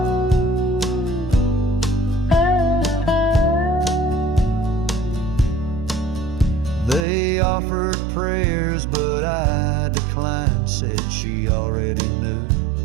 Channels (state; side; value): drops out; left; at 7.1 s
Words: They offered prayers, but I declined, said she already knew.